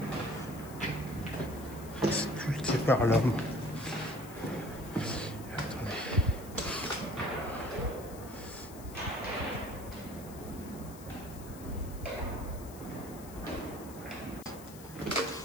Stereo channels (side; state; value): left; noise; hiss, 17 dB below the sound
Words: sculpté par l'homme. Attendez.